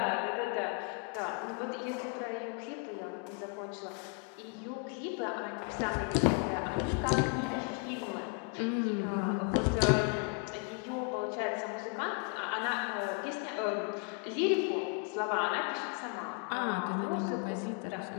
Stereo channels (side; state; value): right; quieter; 34.2 dB